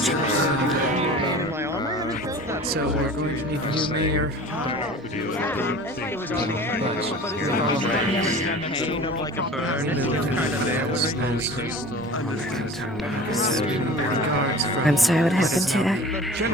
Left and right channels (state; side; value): normal; both; correlation 0.40